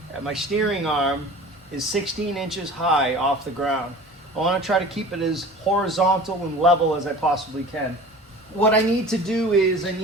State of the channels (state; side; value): normal; both; correlation 0.41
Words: at my steering arm, is 16 inches high off the ground. I want to try to keep it as horizontal and level as I possibly can. What I need to do is I